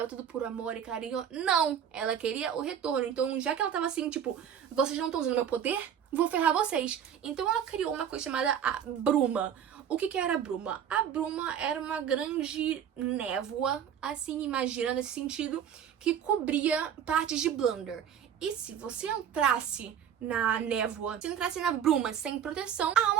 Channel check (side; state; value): left; quieter; 8.8 dB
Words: tudo por amor e carinho. Não! Ela queria o retorno. Então, já que ela tava assim, tipo, vocês não estão usando meu poder, vou ferrar vocês. Então, ela criou uma coisa chamada a bruma. O que era a bruma? A bruma era uma grande névoa, assim, imagina, nesse sentido, que cobria partes de Blunder. E se você entrasse na névoa, se entrasse na bruma sem proteção, a